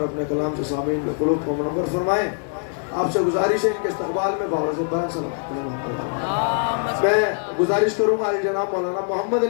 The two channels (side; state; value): right; silent; 56 dB below the other